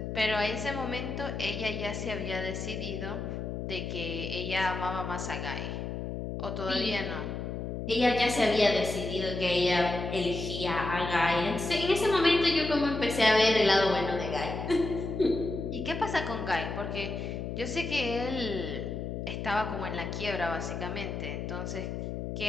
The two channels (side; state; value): left; noise; hum, 5 dB below the sound